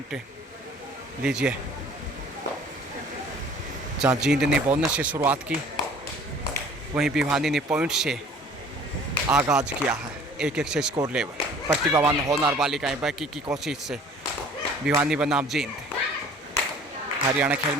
लीजिए, जहाँ जींद ने बोनस से शुरुआत की, वहीं भिवानी ने पॉइंट से आगाज़ किया है। 1-1 से स्कोर लेवल। प्रतिभावान होनहार बालिकाएं बाकी की कोशिश से भिवानी बनाम जींद। हरियाणा खेल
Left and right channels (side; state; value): both; normal; correlation 0.50